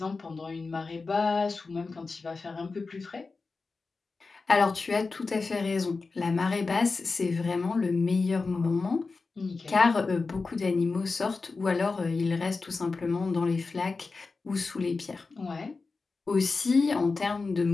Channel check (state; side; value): quieter; right; 4.1 dB